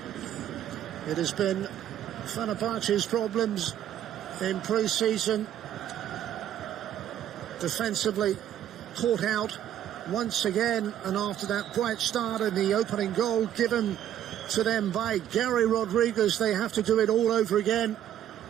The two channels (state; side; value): quieter; left; 10.9 dB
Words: It has been Fenerbahçe's problems in pre-season. Defensively caught out once again, and after that bright start and the opening goal given to them by Gary Rodriguez, they have to do it all over again.